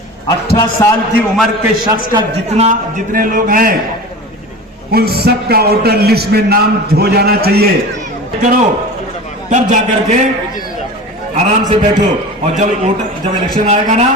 18 साल की उम्र के शख्स का जितने लोग हैं उन सब का वोटर लिस्ट में नाम हो जाना चाहिए। करो, तब जाकर के आराम से बैठो। और जब इलेक्शन आएगा ना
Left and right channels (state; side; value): normal; both; correlation 0.33